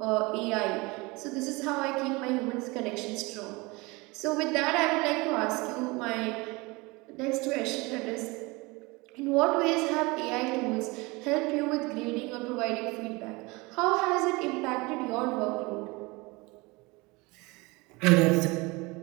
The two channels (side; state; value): left; quieter; 24.6 dB